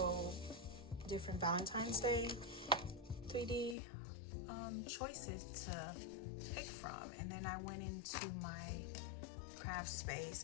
different Valentine's Day 3D choices to pick from. And then I went into my craft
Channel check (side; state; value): right; drops out; at 3.8 s